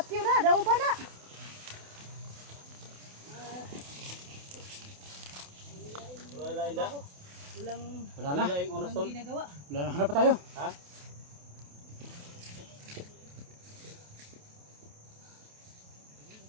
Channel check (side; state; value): left; late; 28 ms